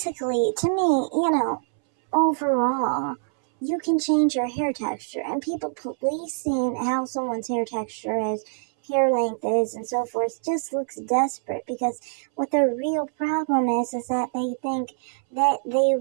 to me, overall, you can change your hair texture, and people policing how someone's hair texture is, hair length is, and so forth just looks desperate, because what their real problem is that they think that they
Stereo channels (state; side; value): silent; left; 62 dB below the other